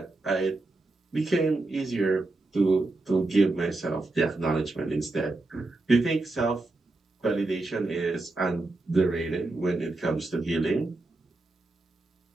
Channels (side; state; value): left; quieter; 3.0 dB